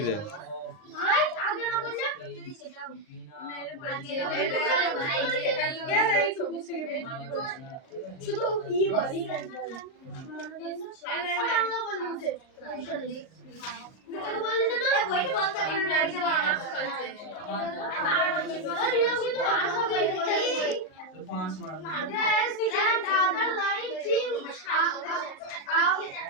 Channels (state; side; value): late; right; 38 ms